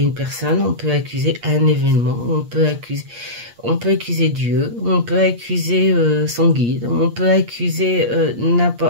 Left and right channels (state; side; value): late; left; 8.5 ms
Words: personne, on peut accuser un événement, on peut accuser Dieu, on peut accuser son guide, on peut accuser